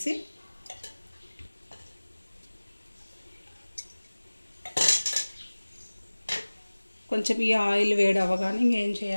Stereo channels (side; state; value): both; inverted; correlation -1.00